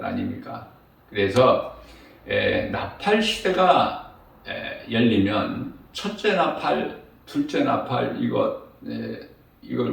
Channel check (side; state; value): both; identical; correlation 1.00